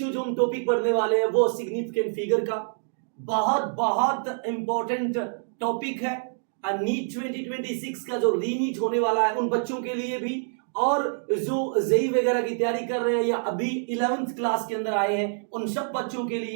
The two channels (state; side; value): silent; left; digital silence